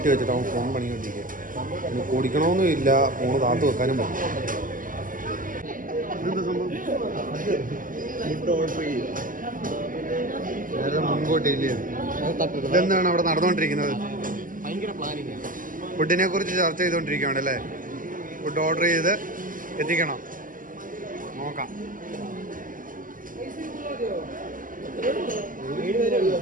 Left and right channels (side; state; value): left; late; 0.39 ms